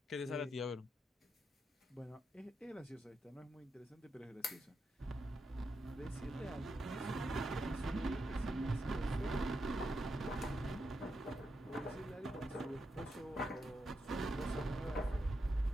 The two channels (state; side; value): normal; both; correlation 0.84